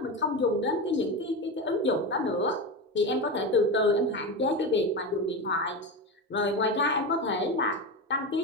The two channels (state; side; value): normal; both; correlation 0.20